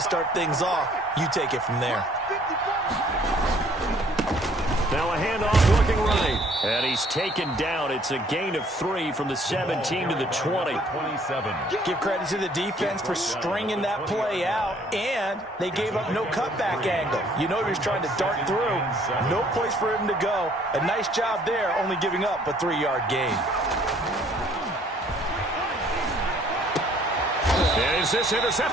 things off. You take it from there. Now a handoff looking right. And he's taken down. It's a gain of 3 from the 17 to the 20. 27. Give credit to the defense for stringing that play out, and they gave up no cutback angle. You know he was trying to dart through. No place for him to go. A nice job there, only giving up a 3-yard gain. Is this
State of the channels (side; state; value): both; normal; correlation 0.60